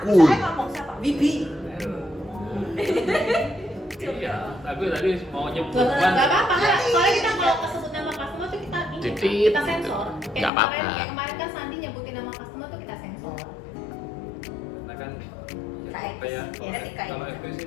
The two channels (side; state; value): right; drops out; at 10.5 s